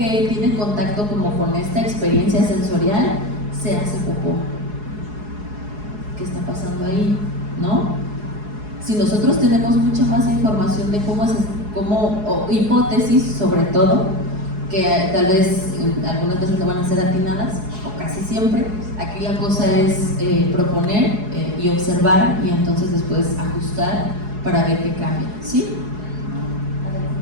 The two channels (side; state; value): left; late; 4.8 ms